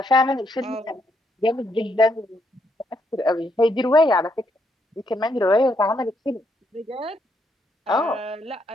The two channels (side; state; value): both; normal; correlation 0.75